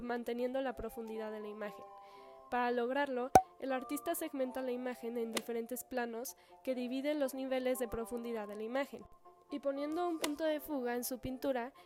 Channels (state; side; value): identical; both; correlation 1.00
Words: manteniendo la profundidad de la imagen. Para lograrlo, el artista segmenta la imagen en diferentes planos que dividen los niveles de profundidad de la imagen. Y poniendo un punto de fuga en su pintura,